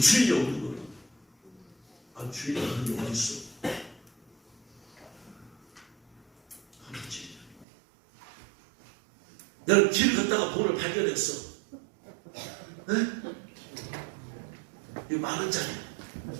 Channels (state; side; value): drops out; left; at 7.7 s